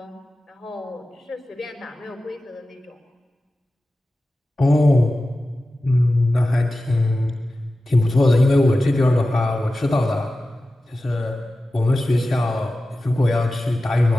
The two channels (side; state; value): both; normal; correlation 0.94